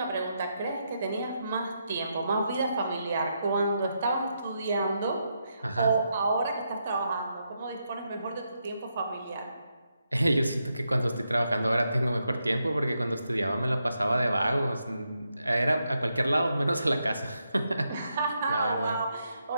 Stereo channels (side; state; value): both; inverted; correlation -0.82